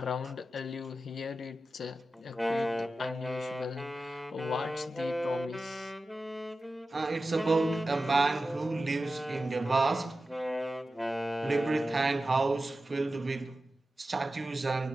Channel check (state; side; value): normal; both; correlation 0.93